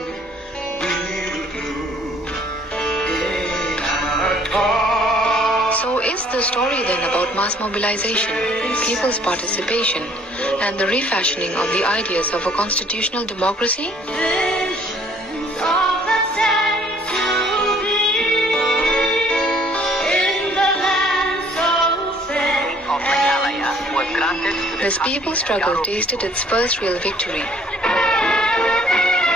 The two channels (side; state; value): both; normal; correlation 0.59